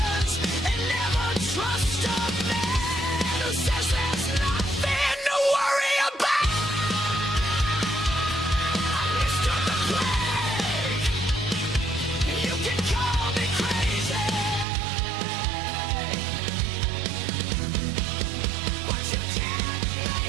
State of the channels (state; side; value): drops out; left; at 14.7 s